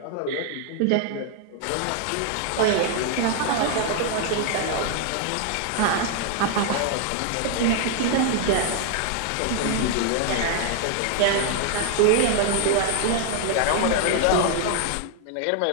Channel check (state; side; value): different; both; correlation 0.00